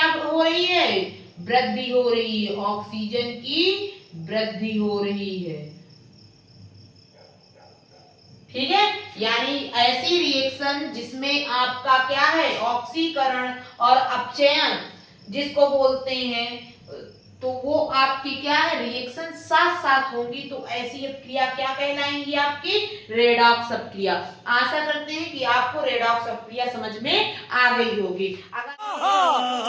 हो रही है, वृद्धि हो रही है, ऑक्सीजन की वृद्धि हो रही है, ठीक है। यानी ऐसी रिएक्शन जिसमें आपका क्या है, ऑक्सीकरण और अपचयन जिसको बोलते हैं, तो वो आपकी क्या है, रिएक्शन साथ साथ होंगी, तो ऐसी क्रिया क्या कहलाएंगी, आपकी रेडॉक्स अपक्रिया। आशा करते हैं कि आपको रेडॉक्स अपक्रिया समझ में आ गई होगी। अगर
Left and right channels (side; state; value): both; identical; correlation 1.00